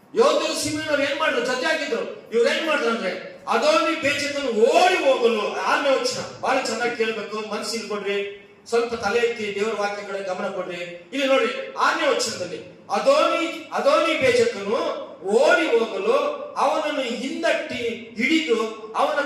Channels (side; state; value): both; identical; correlation 1.00